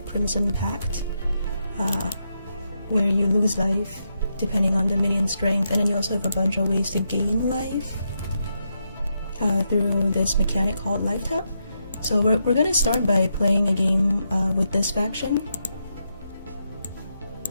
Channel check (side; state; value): both; inverted; correlation -0.83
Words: Crimson Pact, where you lose life depending on the minion strength, and then you also have a bunch of ways to gain life through this mechanic called Life Tap. So we're gonna start by playing a game with this faction.